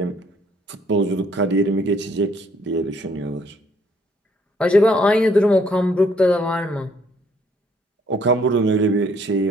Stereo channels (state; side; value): normal; both; correlation 0.65